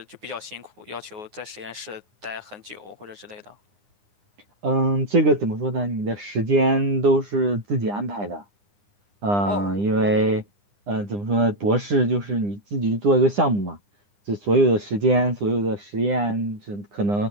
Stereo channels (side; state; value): left; late; 9.6 ms